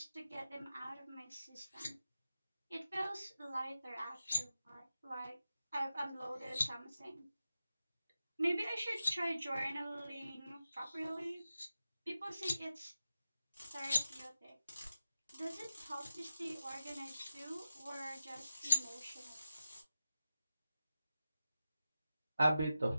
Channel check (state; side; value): inverted; both; correlation -0.92